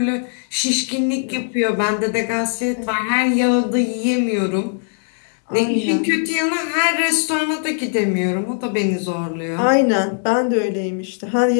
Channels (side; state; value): right; silent; digital silence